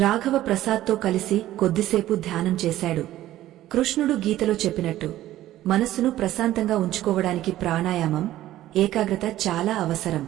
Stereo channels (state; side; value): quieter; left; 14.2 dB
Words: రాఘవ ప్రసాద్తో కలిసి కొద్దిసేపు ధ్యానం చేశాడు. కృష్ణుడు గీతలో చెప్పినట్టు మనస్సును ప్రశాంతంగా ఉంచుకోవడానికి ప్రాణాయామం, ఏకాగ్రత చాలా అవసరం.